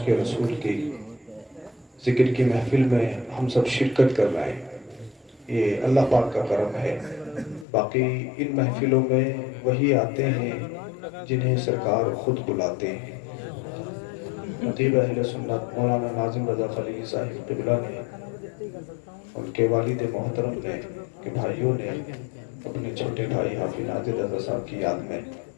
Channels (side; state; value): right; drops out; at 7.7 s